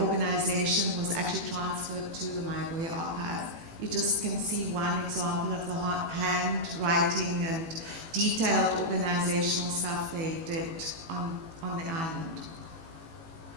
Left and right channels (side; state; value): left; late; 18 ms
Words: was actually transferred to the Mayibuye Archive. You just can see one example of the handwriting and detailed organizational stuff they did on the island.